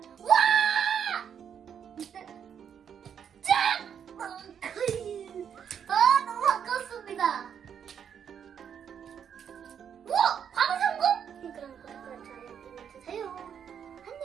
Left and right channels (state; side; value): quieter; left; 8.1 dB